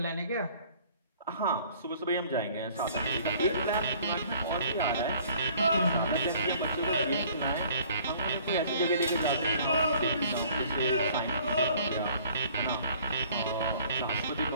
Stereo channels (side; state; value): both; inverted; correlation -0.54